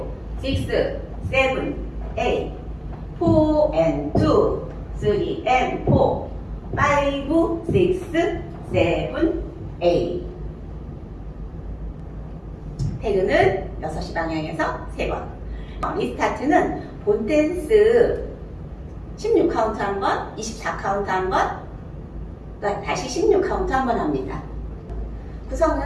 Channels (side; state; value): both; identical; correlation 1.00